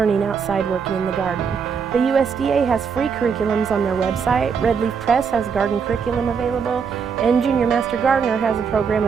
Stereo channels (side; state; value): left; quieter; 6.2 dB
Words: outside working in the garden. The USDA has free curriculums on their website, Red Leaf Press has garden curriculum available, and Junior Master Gardener has a program